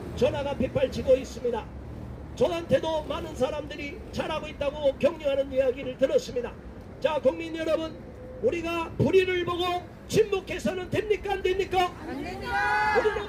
전화가 빗발치고 있습니다. 저한테도 많은 사람들이 잘하고 있다고 격려하는 이야기를 들었습니다. 자, 국민 여러분, 우리가 불의를 보고 침묵해서는 됩니까 안 됩니까? 안 됩니다.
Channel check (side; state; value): both; identical; correlation 1.00